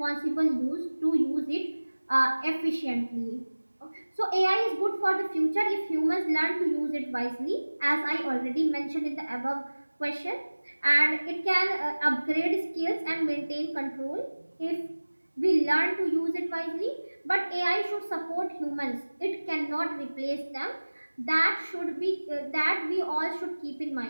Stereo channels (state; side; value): inverted; both; correlation -1.00